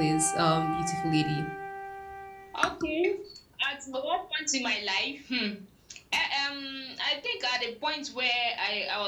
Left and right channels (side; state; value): both; identical; correlation 1.00